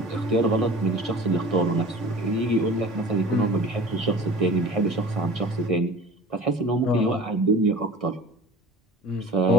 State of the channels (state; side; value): normal; both; correlation 0.40